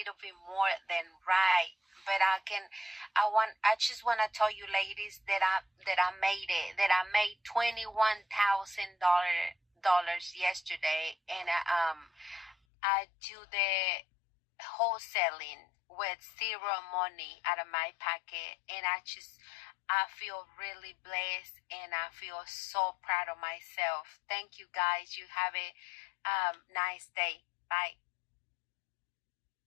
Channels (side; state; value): right; drops out; at 12.6 s